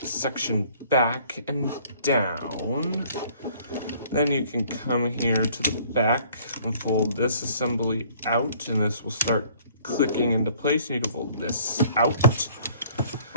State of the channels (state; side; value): inverted; both; correlation -0.57